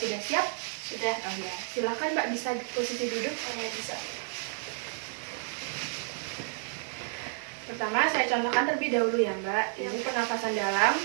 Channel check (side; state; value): left; silent; 55 dB below the other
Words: siap? Sudah. Oh ya, silakan Mbak bisa posisi duduk. Oh ya, bisa. Pertama saya contohkan terlebih dahulu ya Mbak. Ini pernapasan dalam